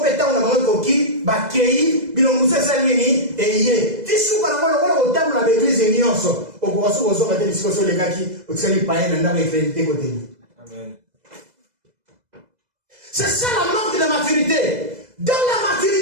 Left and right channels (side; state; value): left; late; 2.0 ms